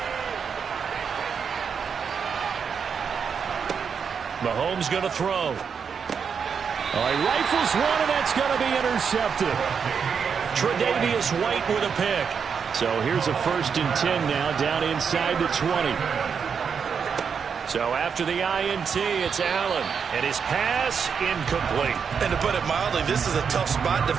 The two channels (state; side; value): quieter; left; 6.5 dB